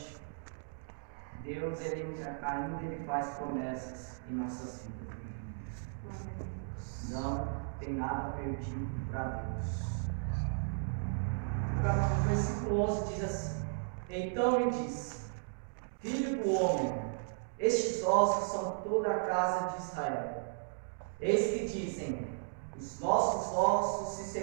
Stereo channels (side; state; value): left; silent; digital silence